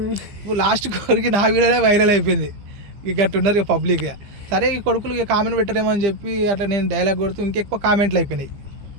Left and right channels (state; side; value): late; left; 15 ms